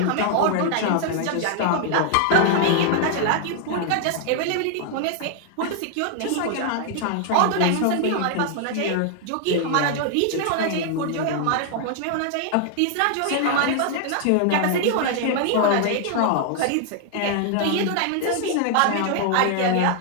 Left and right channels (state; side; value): different; both; correlation 0.00